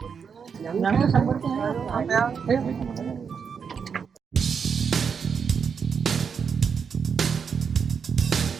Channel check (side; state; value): left; quieter; 6.5 dB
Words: Yang sabar jangan.